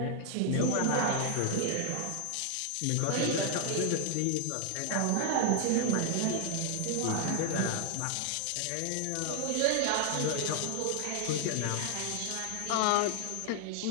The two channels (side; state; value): both; different; correlation 0.00